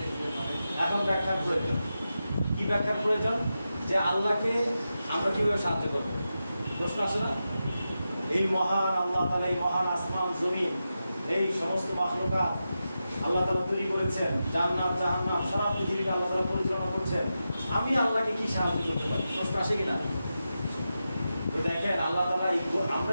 এখন ব্যাখ্যার প্রয়োজন। কি ব্যাখ্যার প্রয়োজন? যে আল্লাহকে আমরা কিভাবে সাহায্য করবো? প্রশ্ন আসে না? এই মহান আল্লাহ তাআলা, এই মহান আসমান জমিন, এই সমস্ত মাখলুকাত আল্লাহ তাআলা তৈরি করেছেন, জান্নাত জাহান্নাম সারা পৃথিবীকে আল্লাহ তাআলা পরিচালনা করছেন। আমি আল্লাহকে কি সাহায্য করতে পারি? প্রশ্ন আসে কিনা? দেখেন, আল্লাহ তাআলা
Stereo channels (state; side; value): inverted; both; correlation -0.90